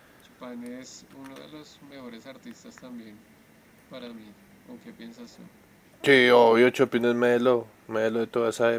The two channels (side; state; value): both; identical; correlation 1.00